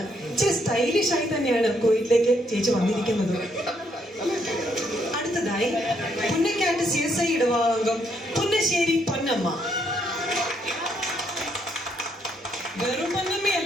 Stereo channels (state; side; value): normal; both; correlation 0.73